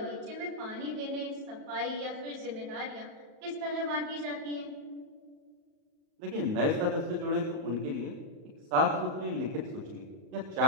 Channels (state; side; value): late; left; 38 ms